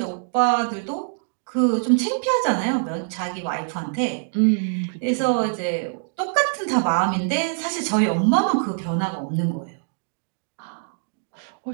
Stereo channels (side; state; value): left; silent; digital silence